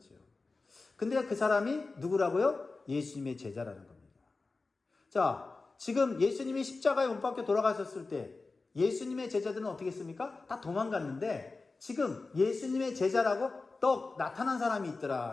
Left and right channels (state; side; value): quieter; right; 3.8 dB